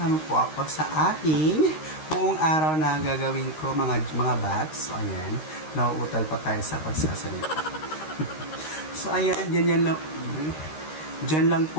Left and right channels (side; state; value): right; late; 13 ms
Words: mo po ako sa aking buong araw na gagawin ko mga bats. So, ayan, nauutal pa tayo sa pagsasalita. So, ayan, dyan lang